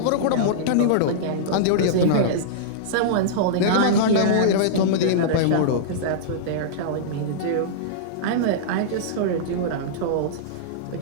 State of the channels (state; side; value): different; both; correlation -0.03